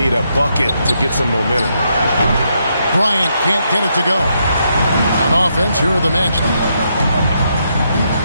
a bucket to get some momentum. Bryant can't get it to go. On offense, here are the Magic.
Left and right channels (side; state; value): both; inverted; correlation -0.78